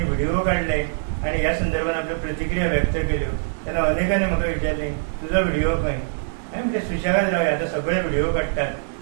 व्हिडिओ काढले आणि ह्या संदर्भात आपल्यो प्रतिक्रिया व्यक्त केल्यो. तेन्ना अनेकांनी म्हाका विचारलें तुजो व्हिडिओ खंय. हांवें म्हणलें सुशेगाद रावया, आतां सगळे व्हिडिओ काडटात,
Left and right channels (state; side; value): silent; left; digital silence